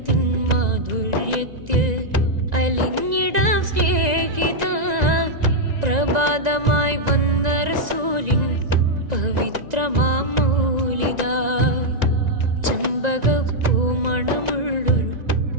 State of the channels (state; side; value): late; left; 1.9 ms